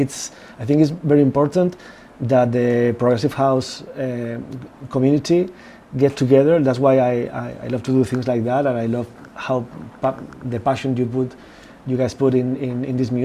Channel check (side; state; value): both; identical; correlation 1.00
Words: I think it's very important that the Progressive House community get together. That's why I love to do things like that, and I love how the passion you guys put in this